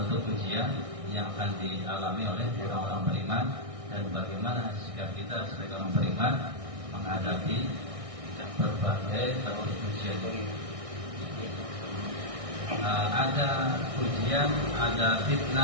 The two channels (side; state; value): left; late; 1.6 ms